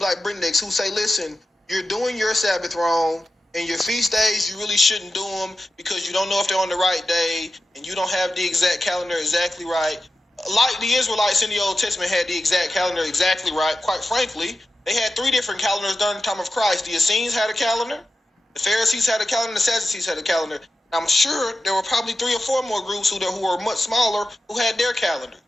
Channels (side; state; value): both; normal; correlation 0.92